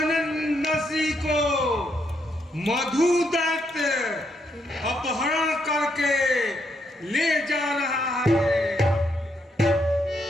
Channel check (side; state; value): both; normal; correlation 0.77